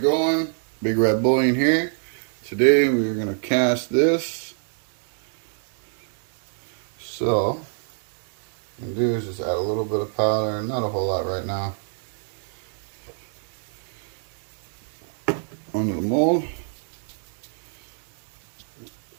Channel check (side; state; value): left; silent; digital silence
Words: Big Red Bullion here. Today we're going to cast this. So, what I'm going to do is just add a little bit of powder, not a whole lot right now, onto the mold.